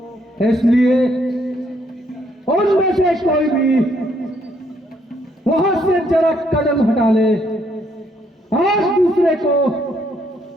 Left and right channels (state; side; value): normal; both; correlation 0.71